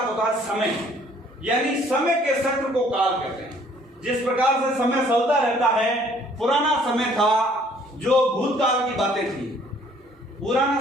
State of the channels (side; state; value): both; normal; correlation 0.59